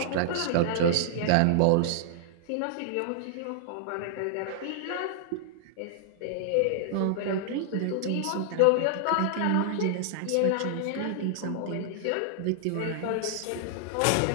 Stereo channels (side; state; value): both; different; correlation -0.01